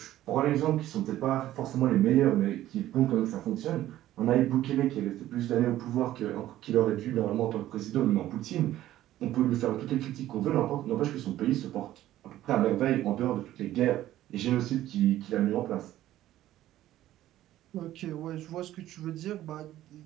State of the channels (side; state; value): left; quieter; 13.8 dB